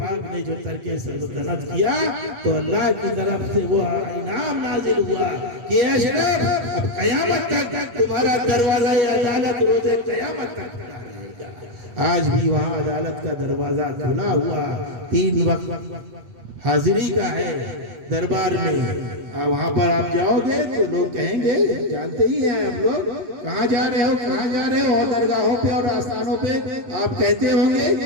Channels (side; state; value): left; late; 8.4 ms